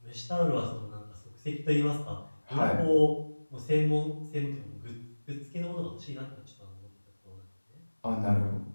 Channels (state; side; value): inverted; both; correlation -1.00